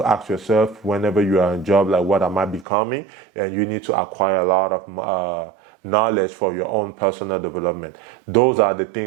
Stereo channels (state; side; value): drops out; left; at 2.7 s